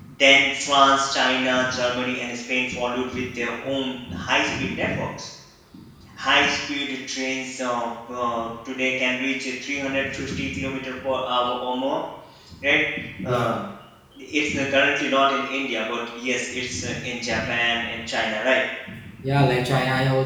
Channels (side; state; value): both; identical; correlation 1.00